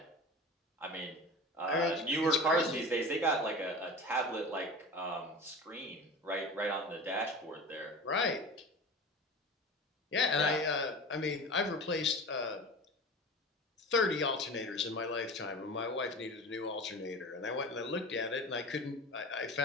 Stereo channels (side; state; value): both; normal; correlation 0.33